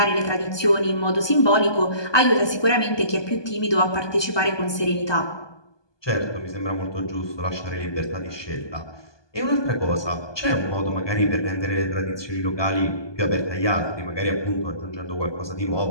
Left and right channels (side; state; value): right; late; 1.2 ms